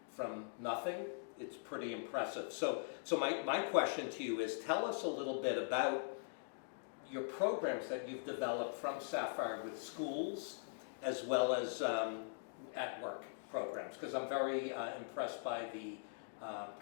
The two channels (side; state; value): right; silent; digital silence